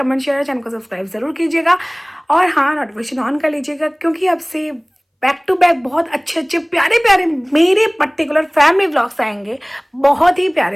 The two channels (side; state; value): both; identical; correlation 1.00